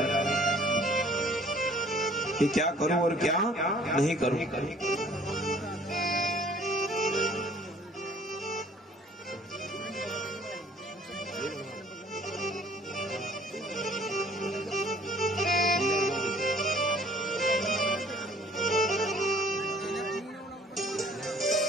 कि क्या करूं और क्या नहीं करूं।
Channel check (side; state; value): both; normal; correlation 0.55